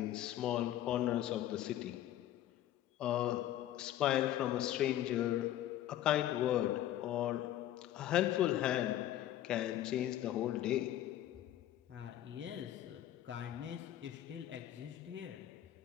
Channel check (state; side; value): quieter; right; 12.6 dB